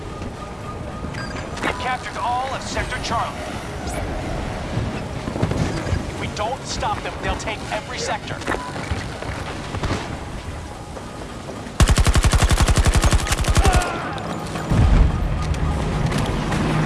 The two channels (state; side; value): identical; both; correlation 1.00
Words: We've captured all of Sector Charlie. If we don't stop them, they'll take every sector.